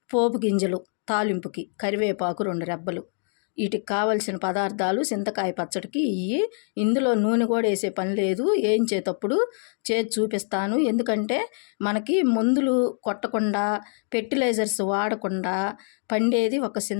పోపు గింజలు తాలింపుకి, కరివేపాకు 2 రెబ్బలు. వీటికి కావలసిన పదార్థాలు చింతకాయ పచ్చడికి ఇవి. ఇందులో నూనె కూడా వేసే పని లేదు, వేయించేటప్పుడు చేసి చూపిస్తాను. ఎందుకంటే మనకి మందులు కొట్టకుండా, ఫెర్టిలైజర్స్ వాడకుండా పండేది ఒక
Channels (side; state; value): right; silent; 55 dB below the other